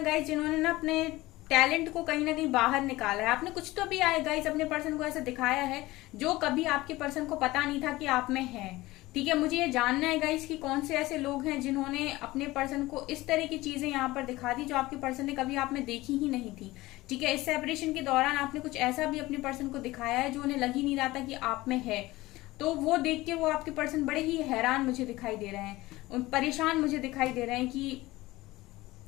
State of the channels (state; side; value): quieter; right; 19.0 dB